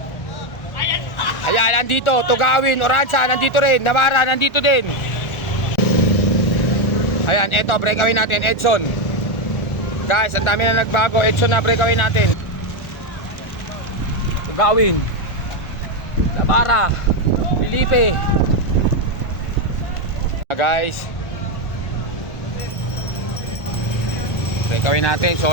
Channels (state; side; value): late; right; 1.3 ms